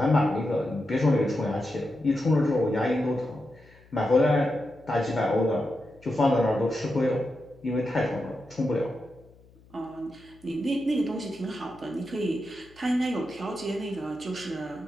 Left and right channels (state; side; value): noise; left; hum, 27 dB below the sound